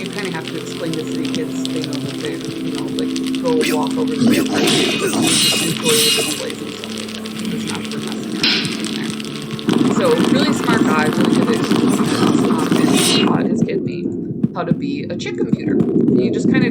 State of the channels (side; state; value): both; identical; correlation 1.00